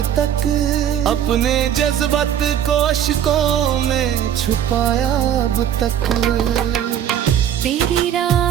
तक, अपने जज्बात को अश्कों में छुपाया अब तक। तेरी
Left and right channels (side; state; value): left; quieter; 9.9 dB